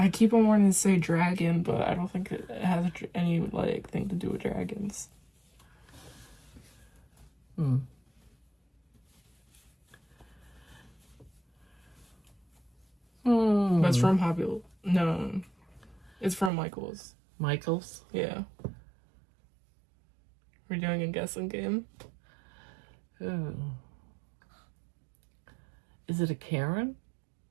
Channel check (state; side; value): drops out; left; at 16.5 s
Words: keep on wanting to say dragon, but I don't think it has any like thing to do with dragons. But it's from Hobby. No, it's from Michael's. Michael's? Yeah. We're doing a guessing game. Ooh. Is it a Karen?